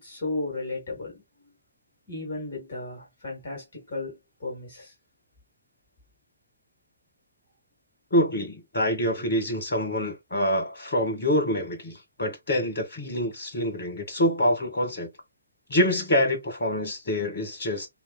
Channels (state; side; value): inverted; both; correlation -0.32